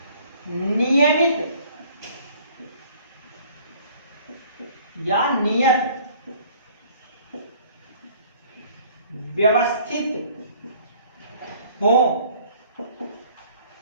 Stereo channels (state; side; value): inverted; both; correlation -0.54